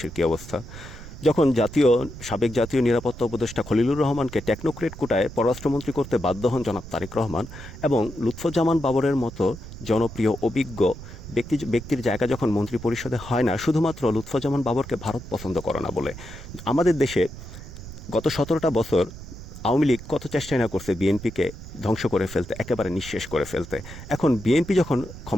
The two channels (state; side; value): noise; right; rumble, 13 dB below the sound